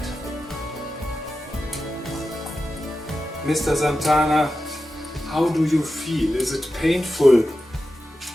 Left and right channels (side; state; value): both; normal; correlation 0.92